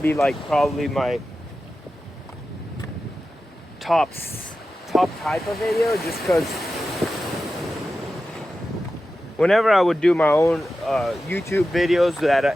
like probably my top type of video, just because whenever I would do my own YouTube videos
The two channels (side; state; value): both; normal; correlation 0.93